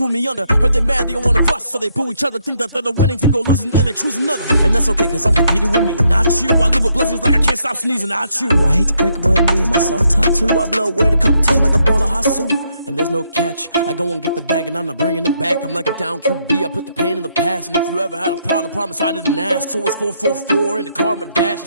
me under. Heard they mad, they don't wanna bust, so they boo each other. Think that they're the winning team, go losing, then they choose another. And that's okay, cause I'm competing with me, not you. I live with blessings like I can't stop sneezing, not you. I hate to break it, but me and myself top two. I blow away the competition like a bowl of hot soup. And there's no catch. I go and get the bag and I'm not bringing it back. I'm like a down QB, I put the pain in the past. And if you ever had a problem, promise I didn't ask. So it's 444 in the car, my dash.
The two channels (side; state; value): both; inverted; correlation -0.74